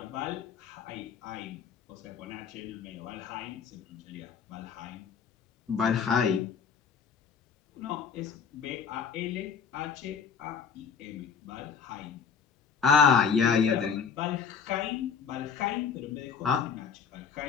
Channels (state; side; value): quieter; right; 6.6 dB